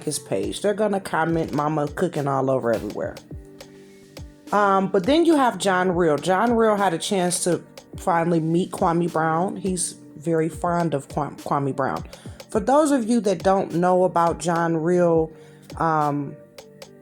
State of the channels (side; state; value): both; identical; correlation 1.00